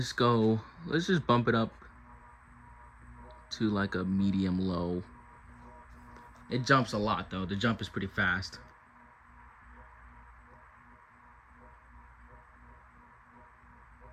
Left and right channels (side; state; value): both; identical; correlation 1.00